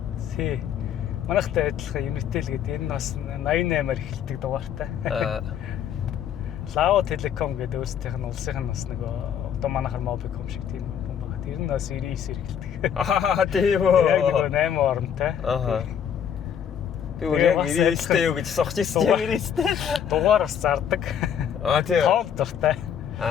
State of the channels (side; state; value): right; quieter; 8.6 dB